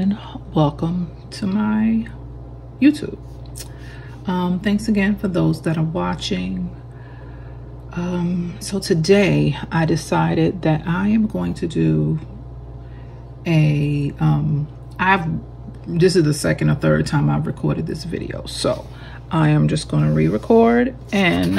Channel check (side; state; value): both; identical; correlation 1.00